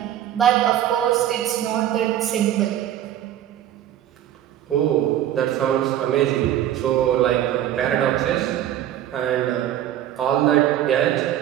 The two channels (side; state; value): left; quieter; 11.7 dB